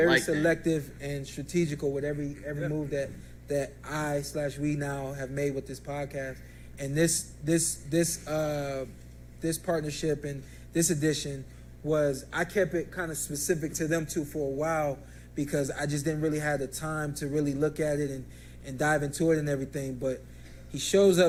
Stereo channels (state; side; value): identical; both; correlation 1.00